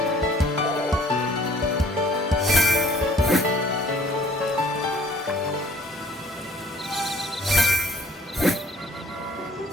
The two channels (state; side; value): normal; both; correlation 0.56